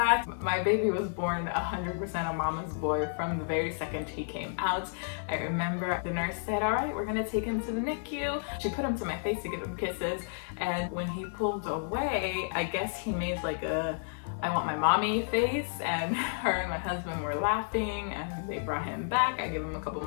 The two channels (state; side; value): silent; right; 57 dB below the other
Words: My baby was born 100% a mama's boy from the very second he came out. I remember the nurse said, all right, we're gonna take him to the NICU. She put him to my face to give him kisses, and when he pulled away, I guess he made like a I want my mommy face, and her and my husband were laughing, and they brought him back. I gave him a couple